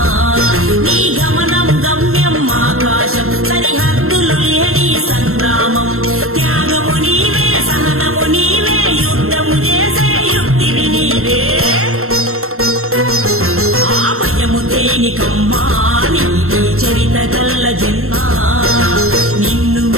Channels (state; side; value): late; left; 0.62 ms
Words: నీ గమనం గమ్యం ఆకాశం సరిహద్దులు లేని సంగ్రామం త్యాగము నీవే సహనము నీవే యుద్ధము చేసే యుక్తివి నీవే ఆ భయము దేనికమ్మా నీదే చరిత గల్ల జన్మ నిన్ను